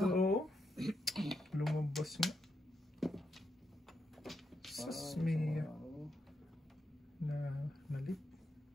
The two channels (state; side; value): normal; both; correlation 0.83